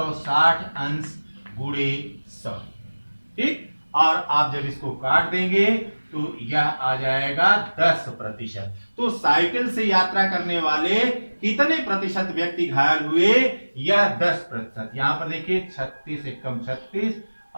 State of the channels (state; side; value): inverted; both; correlation -1.00